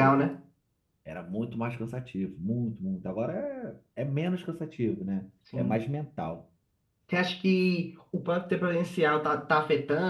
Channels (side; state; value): both; identical; correlation 1.00